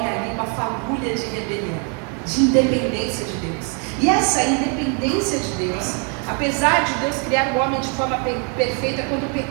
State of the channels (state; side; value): quieter; left; 38.0 dB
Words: ali uma fagulha de rebelião, de independência de Deus. E essa independência de Deus, apesar de Deus criar o homem de forma perfeita, quando o